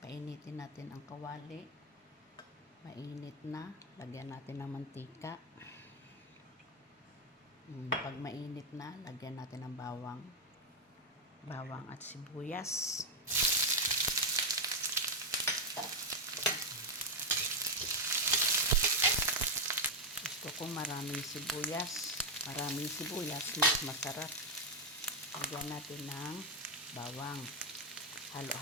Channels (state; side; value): normal; both; correlation 0.03